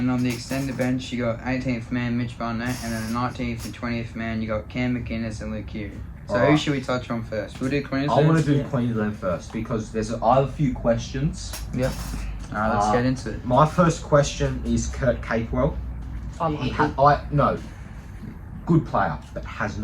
on the extended bench, you got 18th man Mitch Barnett, and then the 19th and 20th man, you got Cam McInnes and Luke Hughes. So who Alright. should we touch on first? We'll do I Queensland. want to do Yeah. Queensland first because I have a few questions. Alright, let's get into it. My first question is Kurt Capewell. I like him. No, good player, but has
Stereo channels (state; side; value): identical; both; correlation 1.00